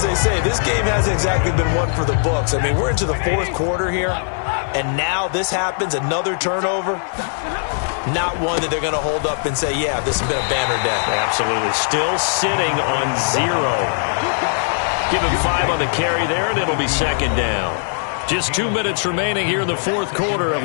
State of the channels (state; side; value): silent; right; 60 dB below the other